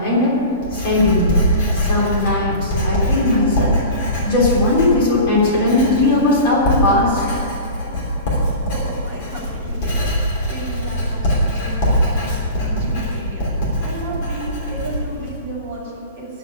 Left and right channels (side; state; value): both; inverted; correlation -0.35